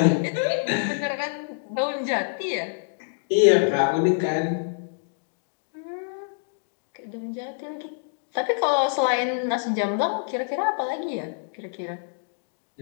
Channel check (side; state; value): right; silent; digital silence